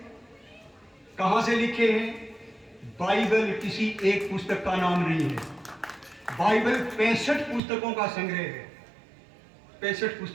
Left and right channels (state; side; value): drops out; left; at 7.6 s